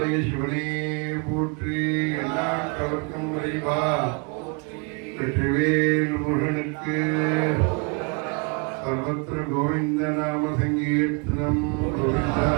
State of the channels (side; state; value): left; quieter; 33.2 dB